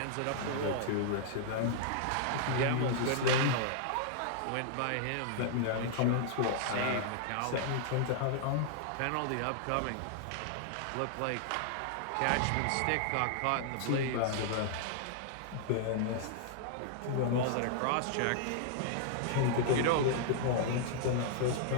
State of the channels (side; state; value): both; different; correlation -0.01